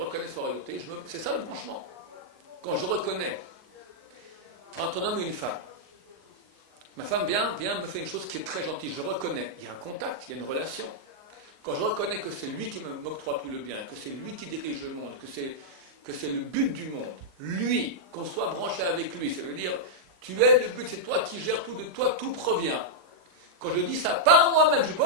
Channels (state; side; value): late; left; 38 ms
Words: sa royauté, c'est ça le branchement. Quand je reconnais entre un homme et une femme, ma femme vient me fait une chose qui est très gentille, je reconnais, il y a un contact, il y a une relation. Quand je reconnais que c'est lui qui m'octroie tout le bien, que c'est lui qui dirige le monde, que c'est le but du monde, lui, qu'on soit branché avec lui, ça veut dire, tu es le but, c'est toi qui gères tout, de toi tout provient. Quand je dis ça, par moi-même, je ne suis